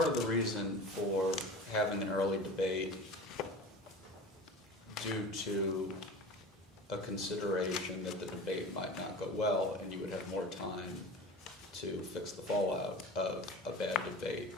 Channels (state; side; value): normal; both; correlation 0.36